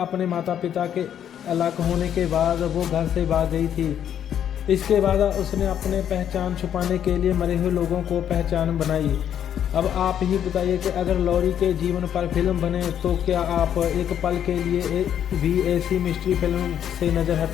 माता पिता के अलग होने के बाद वो घर से भाग गई थी। इसके बाद उसने अपने पहचान छुपाने के लिए मरे हुए लोगों को पहचान बनाई। अब आप ही बताइए कि अगर लॉरी के जीवन पर फिल्म बने तो क्या आप एक पल के लिए भी ऐसी मिस्ट्री फिल्म से नज़र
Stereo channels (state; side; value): quieter; right; 9.6 dB